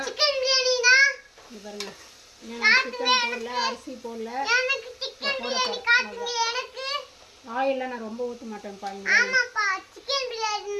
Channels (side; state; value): both; identical; correlation 1.00